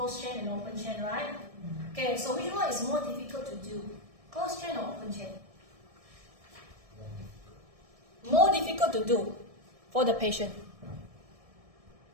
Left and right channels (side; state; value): left; late; 1.7 ms